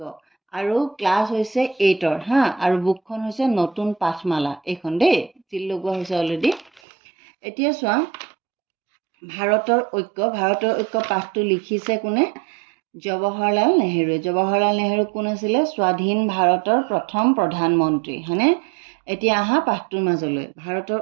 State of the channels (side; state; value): left; drops out; at 6.8 s